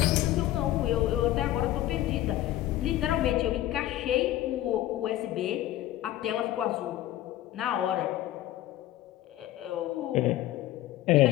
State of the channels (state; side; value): quieter; right; 14.3 dB